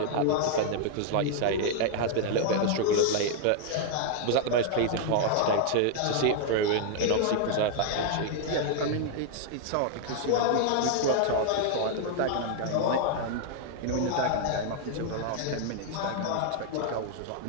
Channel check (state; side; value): different; both; correlation 0.00